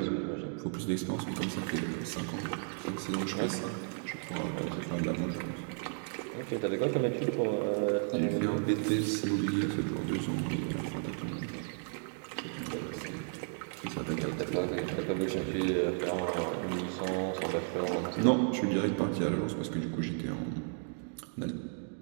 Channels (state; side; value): silent; left; 55 dB below the other